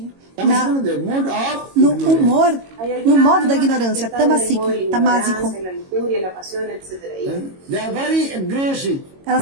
tamasic, the mode of no ignorance. humor, Hay no algunas modo da almas ignorância, que están en el modo de tamasik, la tamásico. ignorancia, la lujuria, la pasión, etc. Y They are very aggressive. Elas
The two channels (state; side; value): late; left; 22 ms